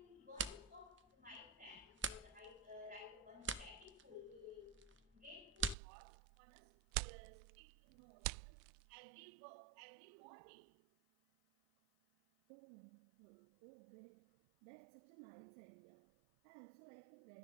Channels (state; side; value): drops out; left; at 5.8 s